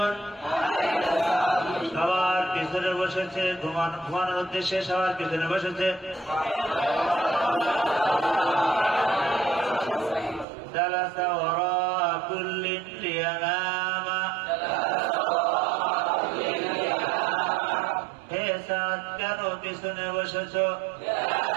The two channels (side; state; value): left; drops out; at 10.5 s